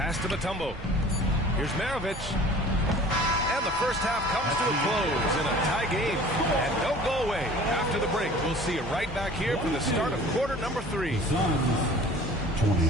to Mutombo. Here's Maravich. And the first half comes to a close in a tie game. And don't go away. After the break, we'll see you right back here for the start of quarter number 3. Suns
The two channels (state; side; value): normal; both; correlation 0.46